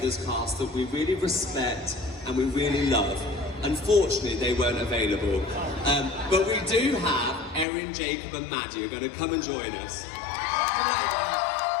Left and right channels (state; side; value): drops out; right; at 7.7 s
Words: cast that we really respect and we really love. Unfortunately, they weren't available. But we do have Erin, Jacob and Maddie are going to come and join us.